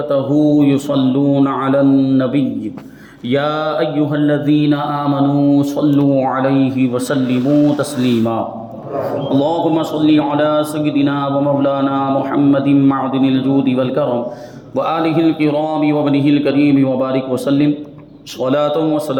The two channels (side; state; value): both; identical; correlation 1.00